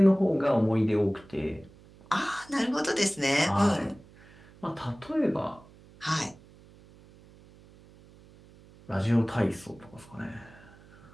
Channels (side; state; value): right; noise; hum, 24 dB below the sound